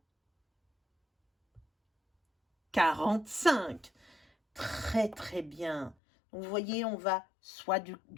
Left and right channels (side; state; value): right; drops out; at 6.0 s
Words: 45. Très, très bien. Donc, vous voyez, on va soit